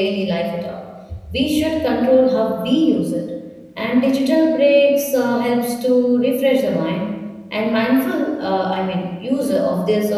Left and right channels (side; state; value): both; identical; correlation 1.00